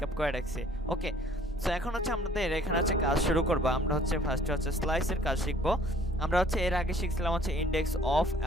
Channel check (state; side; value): normal; both; correlation 0.57